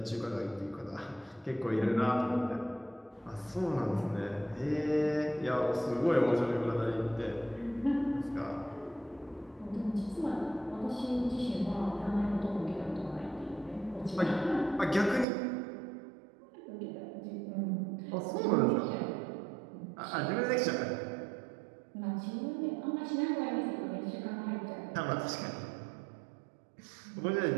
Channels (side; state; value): left; drops out; at 15.2 s